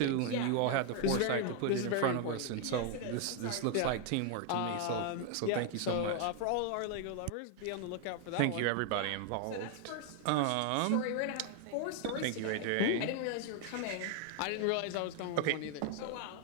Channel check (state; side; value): different; both; correlation 0.00